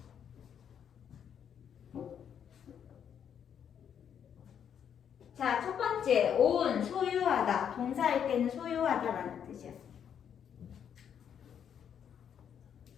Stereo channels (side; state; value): right; quieter; 8.4 dB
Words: 자, 첫 번째, own, 소유하다. 동사일 때는 소유하다라는 뜻이야.